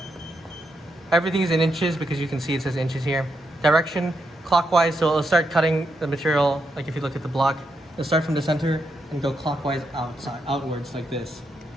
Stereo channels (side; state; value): both; normal; correlation 0.82